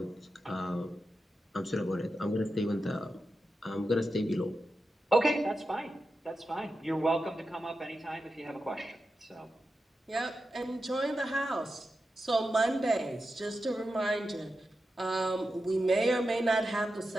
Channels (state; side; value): normal; both; correlation 0.90